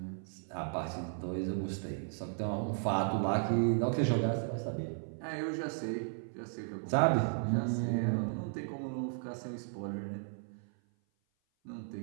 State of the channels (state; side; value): silent; left; 54 dB below the other